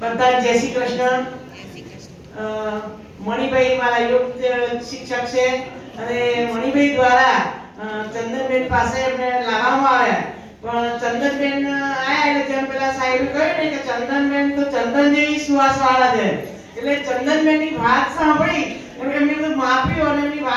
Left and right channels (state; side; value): identical; both; correlation 1.00